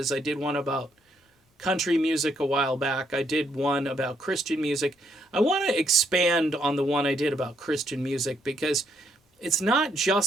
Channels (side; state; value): both; normal; correlation 0.73